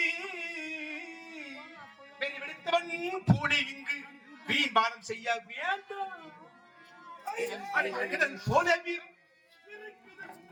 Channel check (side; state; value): both; identical; correlation 1.00